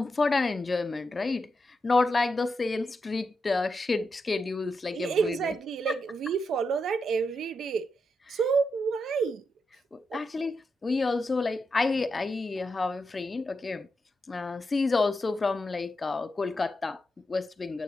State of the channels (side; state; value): both; normal; correlation 0.85